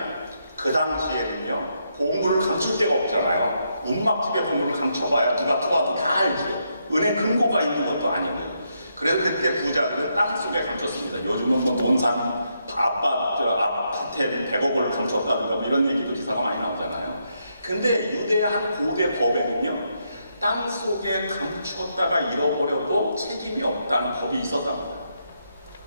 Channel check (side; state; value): both; inverted; correlation -0.79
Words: 그 당시에는요, 보물을 감출 데가 없잖아요. 운막집에 보물을 감춰봐야 누가 들어와도 다 알죠. 은행 금고가 있는 것도 아니고요. 그래서 그때 부자들은 땅속에 감췄습니다. 요즘은 뭐 논산 아파트에 100억을 감췄다든가 뭐 이런 얘기도 기사가 많이 나오잖아요. 근데 유대의 한 고대 법에는요, 땅속에 감추었다가 잃어버려도 책임이 없다는 법이 있었답니다.